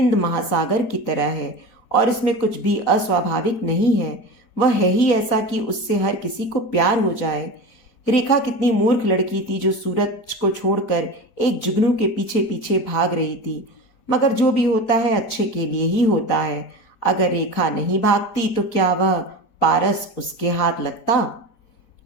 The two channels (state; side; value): late; right; 4.3 ms